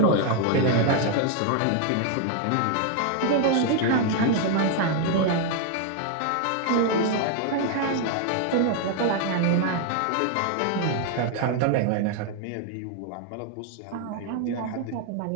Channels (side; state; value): both; different; correlation 0.00